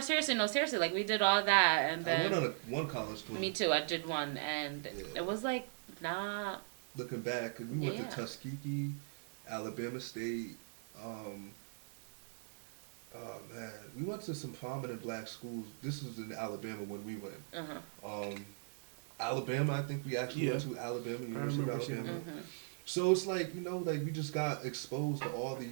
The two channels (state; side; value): silent; left; 52 dB below the other